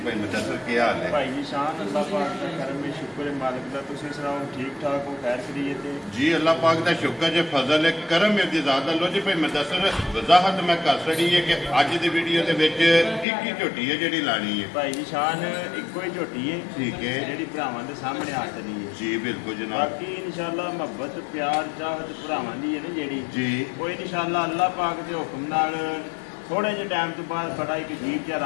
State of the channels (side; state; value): right; drops out; at 13.2 s